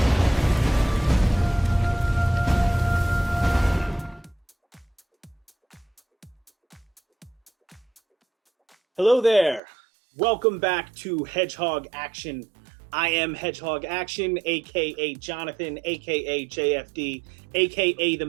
Hello there. Welcome back to Hedgehog Action. I am Hedgehog Action, aka Jonathan, aka JFD, aka the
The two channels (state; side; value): drops out; left; at 9.6 s